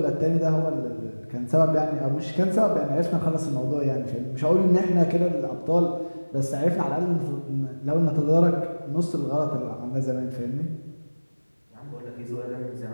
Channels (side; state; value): both; inverted; correlation -1.00